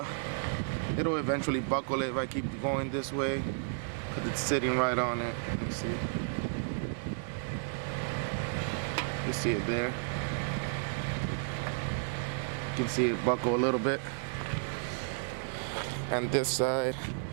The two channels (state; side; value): silent; left; digital silence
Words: it'll eventually buckle it if I keep going this way because it's sitting right on it. Let me see. You see it there. You can see it buckle a little bit. And this side,